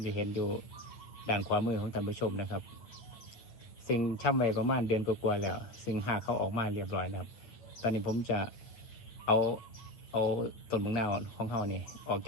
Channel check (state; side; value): late; right; 8.9 ms